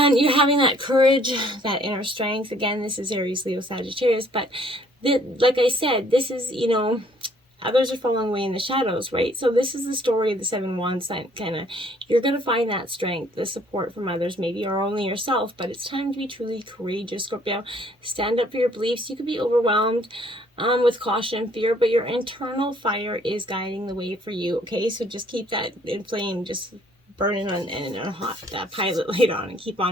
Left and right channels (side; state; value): both; normal; correlation 0.61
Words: you're having that courage, that inner strength. Again, this is Aries, Leo, Sagittarius. But like I said, this is, others are falling away in the shadows, right? So this is the story of the 7 Wands, kind of. You're going to find that strength, the support from others, maybe, or only yourself. But it's time to be truly courageous, Scorpio. Stand up for your beliefs. You could be overwhelmed with caution and fear, but your internal fire is guiding the way for you, okay? So just keep that inflamed, just burning on a hot pilot light on, and keep